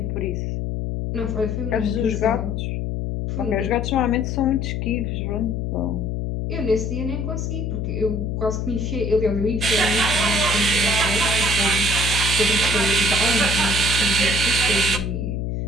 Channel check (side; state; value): left; noise; hum, 1 dB below the sound